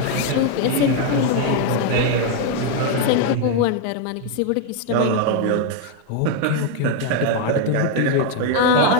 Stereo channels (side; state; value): both; different; correlation 0.01